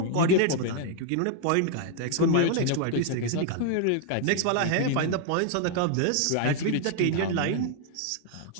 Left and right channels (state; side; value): different; both; correlation 0.00